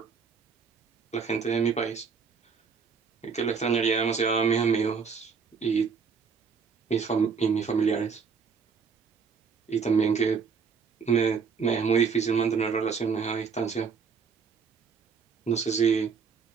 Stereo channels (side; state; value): left; quieter; 5.7 dB